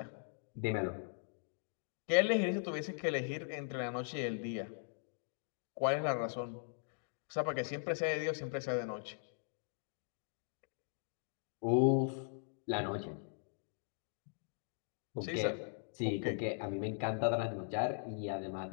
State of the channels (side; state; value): right; silent; digital silence